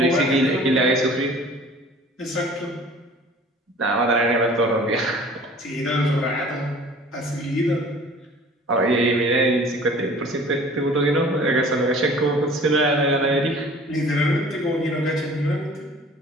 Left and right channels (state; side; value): normal; both; correlation 0.48